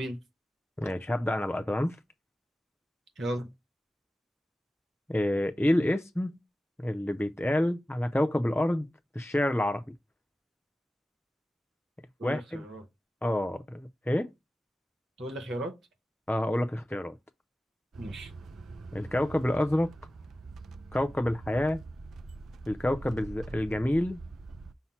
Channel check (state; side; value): normal; both; correlation 0.95